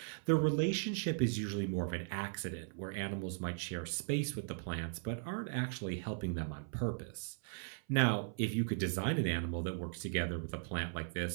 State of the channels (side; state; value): left; silent; 53 dB below the other